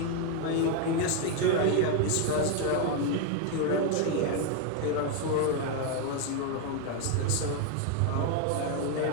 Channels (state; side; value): different; both; correlation 0.01